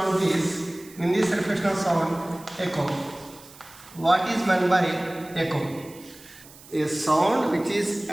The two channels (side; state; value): right; noise; hiss, 21 dB below the sound